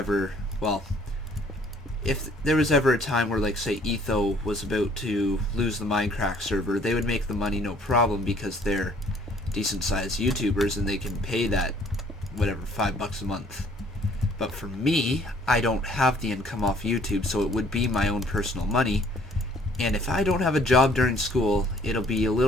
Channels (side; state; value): both; normal; correlation 0.59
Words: well, if there was ever a time where, like, say, Etho was about to lose the Minecraft server, they would make the money no problem because they're decent-sized YouTubers and they can pay that, whatever, $5 a month. But for me, I don't have the income off YouTube, so it would be my own personal money. And if I don't have a job during school, it'll be a